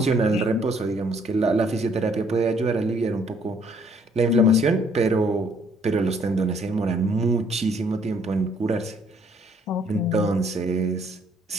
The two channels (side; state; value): both; normal; correlation 0.64